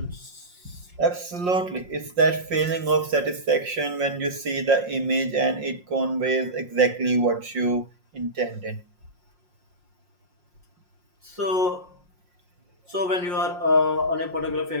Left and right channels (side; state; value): left; late; 5.6 ms